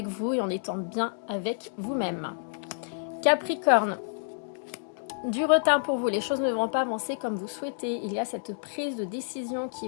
vous et en étant bien avec vous-même. Capricorne, du retard pour vous, les choses ne vont pas avancer comme vous souhaitez. Il y a cette prise de décision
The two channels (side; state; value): right; silent; digital silence